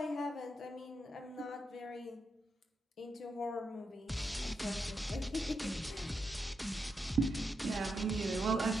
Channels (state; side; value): normal; both; correlation 0.84